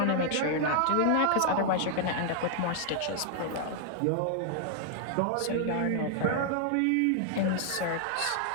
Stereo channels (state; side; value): different; both; correlation 0.00